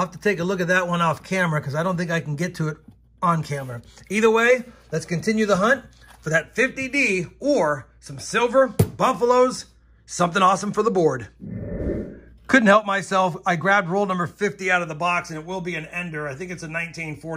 to take a look at that one off camera because I don't think I can get to it on camera. Either way, let's continue the hunt. for that 50D or some silver, buffaloes, something awesome for the board. Couldn't help myself. I grabbed roll number 50 out of the box, and it will be an ender. I think it's a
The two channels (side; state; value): both; identical; correlation 1.00